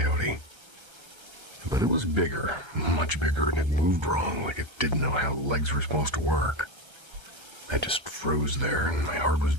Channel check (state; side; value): late; left; 1.3 ms